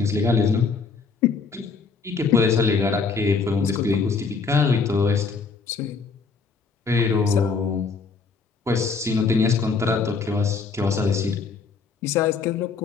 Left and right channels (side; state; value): right; quieter; 4.9 dB